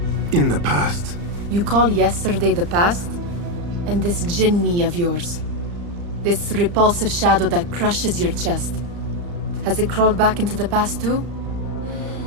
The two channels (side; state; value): left; late; 35 ms